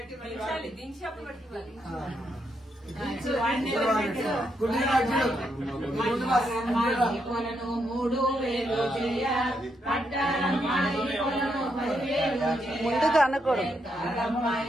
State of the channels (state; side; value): normal; both; correlation 0.79